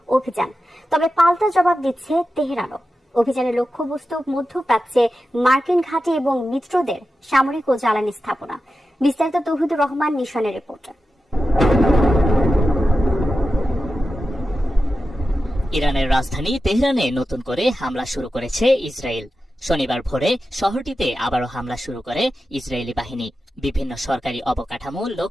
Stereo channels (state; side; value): normal; both; correlation 0.92